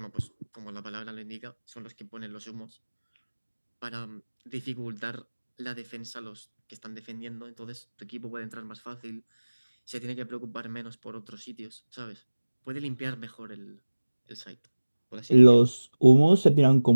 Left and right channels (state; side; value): inverted; both; correlation -1.00